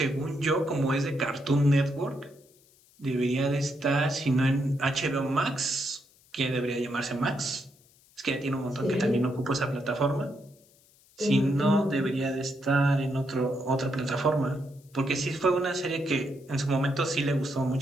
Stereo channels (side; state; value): left; noise; hiss, 30 dB below the sound